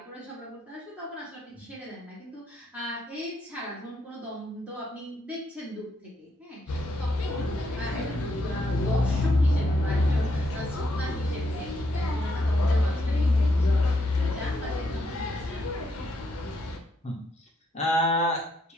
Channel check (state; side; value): normal; both; correlation 0.76